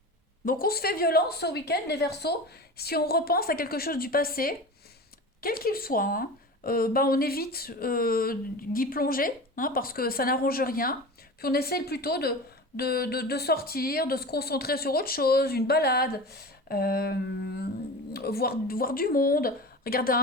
Donc on se fait violence ce week-end, les Verseaux. Si on repense à quelque chose du passé, quel qu'il soit, hein, bah on évite d'y plonger, hein, parce que ça n'arrange rien. Puis on essaye plutôt de sortir, de se concentrer sur autre chose, une balade, euh, voir du monde, regarder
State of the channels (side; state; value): both; normal; correlation 0.32